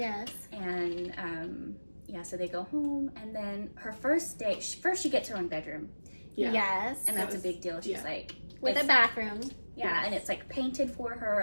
And so they go home, and then her first day, first she gets her own bedroom, Yes. and that's a big deal. She's like, With a bathroom. yeah, and it's like painted for her,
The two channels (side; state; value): both; inverted; correlation -1.00